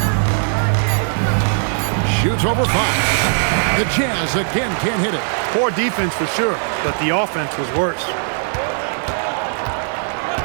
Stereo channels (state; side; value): silent; left; digital silence